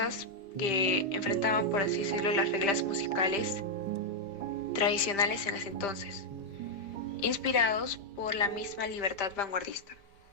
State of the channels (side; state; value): right; late; 5.0 ms